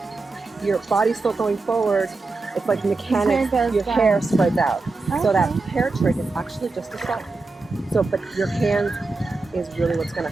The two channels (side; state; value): left; quieter; 3.7 dB